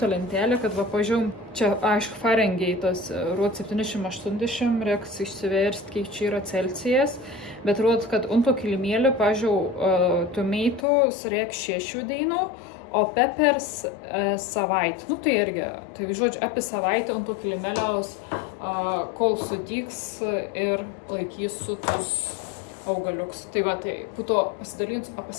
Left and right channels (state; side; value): drops out; right; at 10.9 s